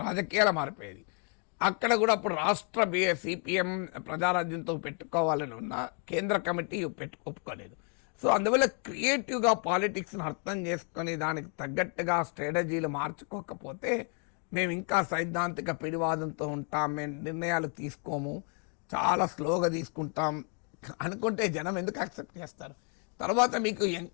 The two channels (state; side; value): quieter; right; 38.1 dB